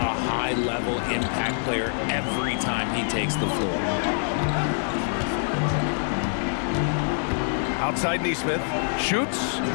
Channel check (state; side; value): silent; right; 58 dB below the other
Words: high-level impact player every time he takes the floor. Outside Nesmith. Shoots.